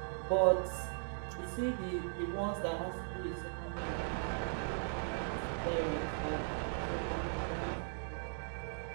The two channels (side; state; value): left; silent; digital silence